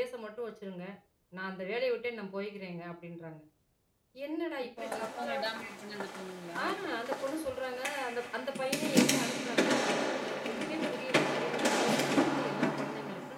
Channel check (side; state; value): both; identical; correlation 1.00